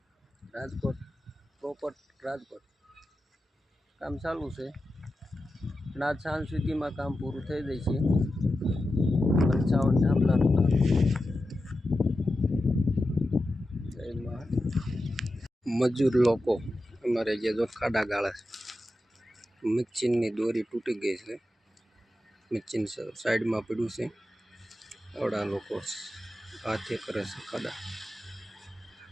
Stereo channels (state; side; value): normal; both; correlation 0.91